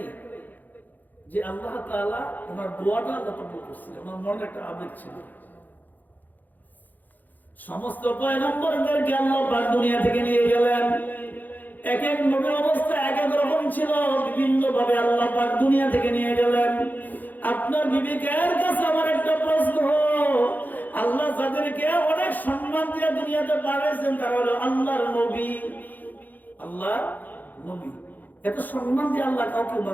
যে আল্লাহ তাআলা ওনার দোয়াটা আল্লাহ কবুল করছিলেন, ওনার মনে একটা আবেগ ছিল। সমস্ত পয়গম্বরদেরকে আল্লাহ পাক দুনিয়া থেকে নিয়ে গেলেন, এক এক নবীর অবস্থা এক এক রকম ছিল, বিভিন্ন ভাবে আল্লাহ পাক দুনিয়া থেকে নিয়ে গেলেন। আপনার বিবেকের কাছে আমার একটা প্রশ্ন, আল্লাহ যাদেরকে অনেক সম্মান দিয়ে দুনিয়াতে পাঠিয়েছেন তারা হলো আল্লাহর নবী। আল্লাহ নবী, এত সম্মান দিয়ে আল্লাহ কাউকে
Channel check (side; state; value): right; late; 0.084 ms